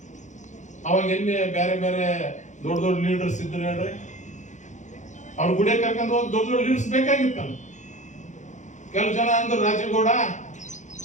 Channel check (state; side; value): late; right; 0.35 ms